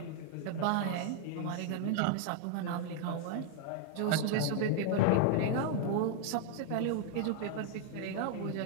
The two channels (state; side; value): different; both; correlation 0.00